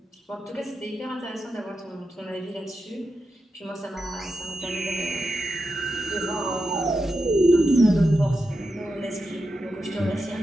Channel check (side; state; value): both; normal; correlation 0.88